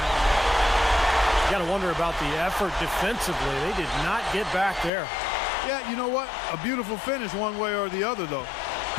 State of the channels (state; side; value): drops out; right; at 4.9 s